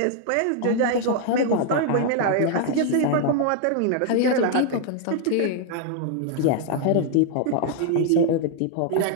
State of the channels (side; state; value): both; different; correlation 0.00